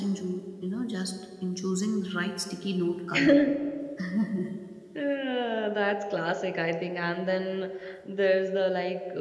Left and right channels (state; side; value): identical; both; correlation 1.00